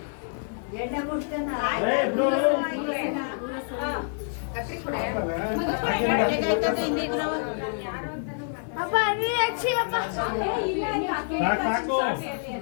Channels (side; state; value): right; silent; digital silence